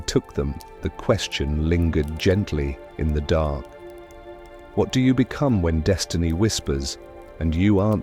took them, the question lingered gently in the dark. What do you become when destiny whispers, and you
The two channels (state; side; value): identical; both; correlation 1.00